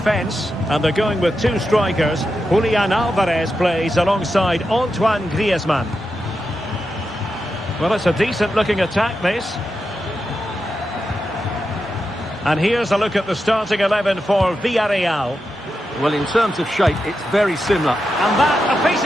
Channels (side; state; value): both; normal; correlation 0.88